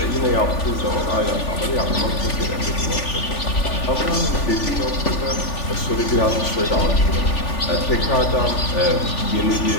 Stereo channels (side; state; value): right; late; 3.4 ms